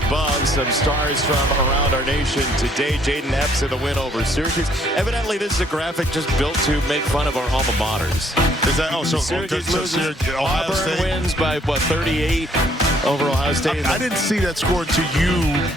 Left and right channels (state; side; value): normal; both; correlation 0.65